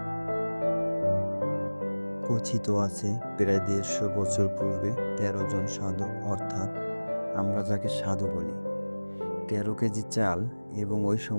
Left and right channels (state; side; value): inverted; both; correlation -1.00